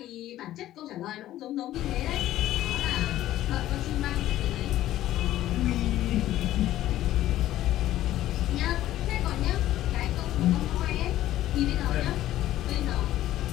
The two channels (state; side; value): quieter; right; 13.9 dB